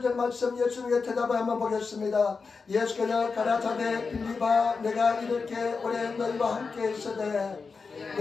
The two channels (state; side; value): quieter; right; 4.8 dB